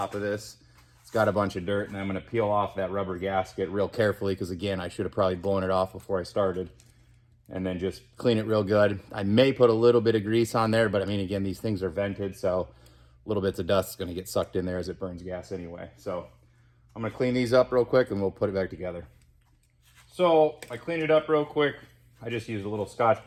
of this. It's got a bunch of dirt, and I'm gonna peel off that rubber gasket real carefully, because again, I should have probably blown it off before I started. And then just clean it real good. I may put a little bit of grease on there, but I mean, again, these things are vented, so little bits of dust is gonna get sucked in there as it burns gas anyway. So I'm gonna clean these up real quick and we'll put it back together. So I cleaned it up real quick. I just used a little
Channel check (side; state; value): both; identical; correlation 1.00